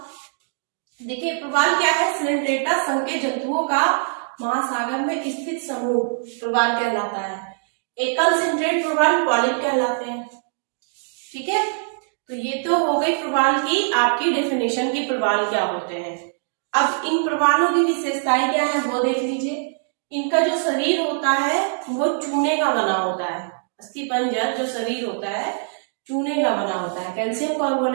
देखिए प्रवाल क्या है, सिलेंड्रेटा संघ के जंतुओं का महासागर में स्थित समूह प्रवाल कहलाता है। एकल सिंट्रेट प्रवाल पॉलिप कहलाते हैं। ठीक है, तो ये तो हो गई प्रवाल की आपकी डेफिनेशन की प्रवाल क्या होते हैं। अब इन प्रवालों की विशेषताएं क्या है वो देख लीजिए। इनका जो शरीर होता है वो चूने का बना होता है। अस्थिपंजर जो शरीर होता है चूने का बना होता है, कैल्शियम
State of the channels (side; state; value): left; silent; digital silence